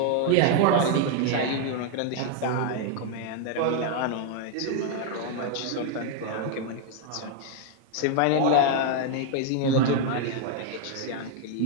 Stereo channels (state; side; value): different; both; correlation 0.00